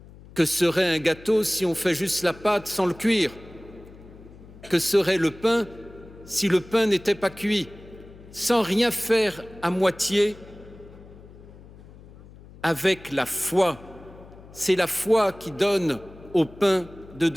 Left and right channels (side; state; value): left; noise; hum, 20 dB below the sound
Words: Que serait un gâteau si on fait juste la pâte sans le cuire? Que serait le pain si le pain n'était pas cuit? Sans rien faire à moitié, avec la foi. C'est la foi qui donne au pain de